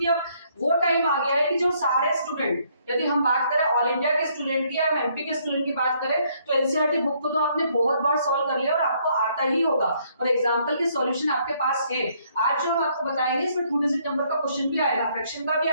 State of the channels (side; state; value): both; inverted; correlation -0.68